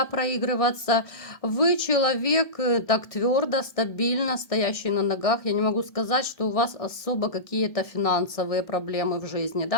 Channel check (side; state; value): right; late; 1.3 ms